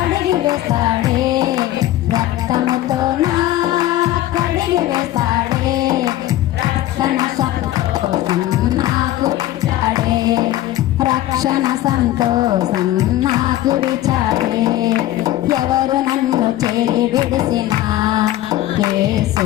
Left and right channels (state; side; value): quieter; right; 14.5 dB